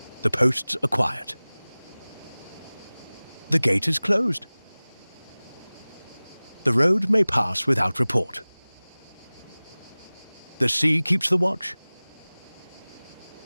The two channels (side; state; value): both; inverted; correlation -1.00